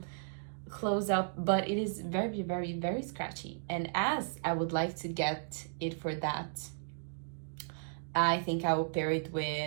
close up, but it is very scratchy. And as I would like to get it for that, I think I will pair it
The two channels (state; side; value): silent; left; digital silence